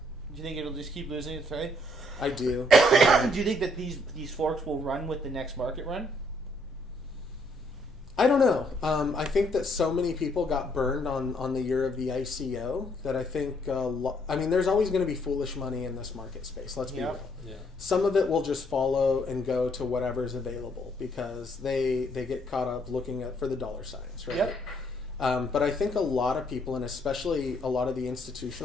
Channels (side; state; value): both; normal; correlation 0.69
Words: you think it'll just keep losing its way? I do. Do you think that these forks will run with the next market run? I don't know. I think that so many people got burned on the year of the ICO that I think, there's always going to be foolish money in this market space. Let's be real. Yeah. Some of it will just follow and go to whatever's available because they get caught up looking for the dollar signs, right? Yep. But I think a lot of people, and especially a lot of the